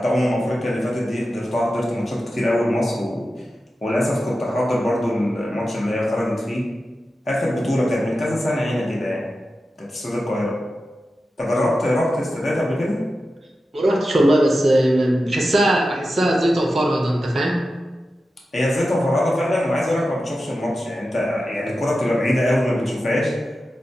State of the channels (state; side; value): normal; both; correlation 0.92